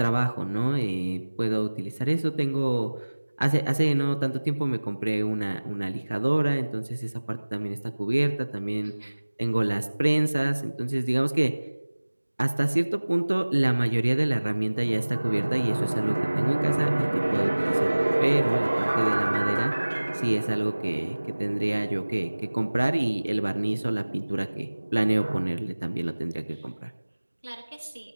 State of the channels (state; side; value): inverted; both; correlation -1.00